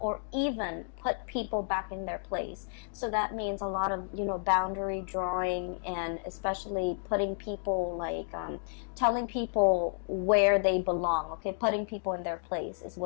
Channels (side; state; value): right; silent; digital silence